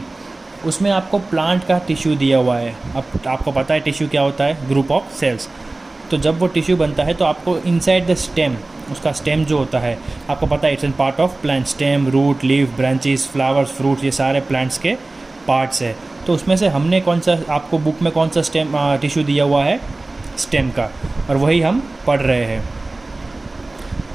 उसमें आपको प्लांट का टिश्यू दिया हुआ है। अब आपको पता है टिश्यू क्या होता है, ग्रुप ऑफ सेल्स। तो जब वो टिश्यू बनता है तो आपको इनसाइड द स्टेम, उसका स्टेम जो होता है आपको पता है, it's an part of plant. Stem, root, leaf, branches, flowers, fruits, ये सारे प्लांट्स के पार्ट्स है। तो उसमें से हमने कौन सा, आपको बुक में कौन सा स्टेम टिश्यू दिया हुआ है, स्टेम का, और वही हम पढ़ रहे हैं।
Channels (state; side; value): quieter; left; 3.0 dB